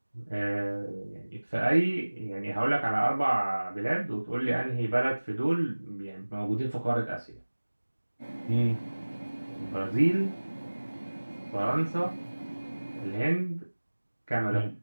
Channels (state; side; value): inverted; both; correlation -1.00